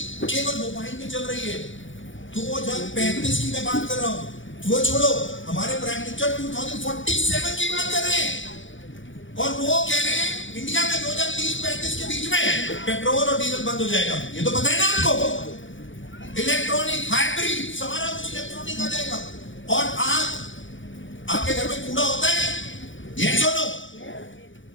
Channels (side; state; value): right; late; 0.56 ms